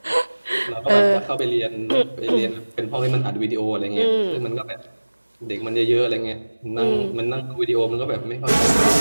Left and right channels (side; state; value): both; inverted; correlation -1.00